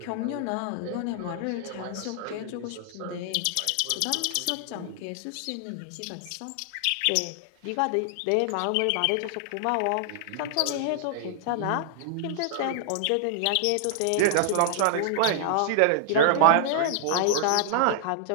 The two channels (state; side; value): different; both; correlation -0.01